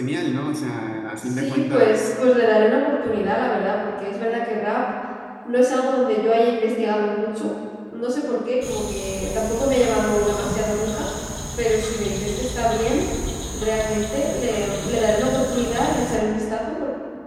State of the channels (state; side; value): identical; both; correlation 1.00